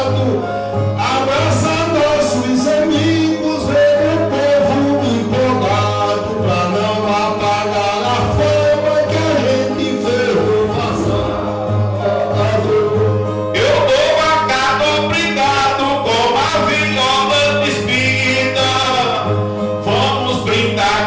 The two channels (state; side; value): identical; both; correlation 1.00